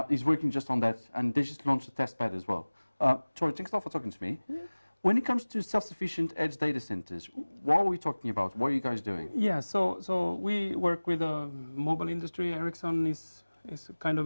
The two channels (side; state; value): both; inverted; correlation -1.00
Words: is working just on that, and they just launched a test bed as well. Tor, thanks a lot for talking to me. Yeah. When it comes to self-sufficient edge data centers, what are we talking about? What are you guys doing? Yeah, so we work with the mobile industry. Ericsson is kind